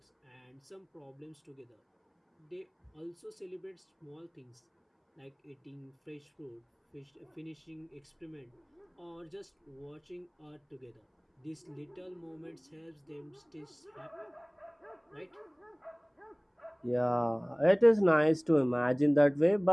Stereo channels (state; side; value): identical; both; correlation 1.00